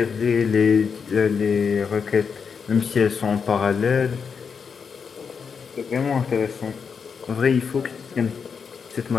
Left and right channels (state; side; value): quieter; right; 6.1 dB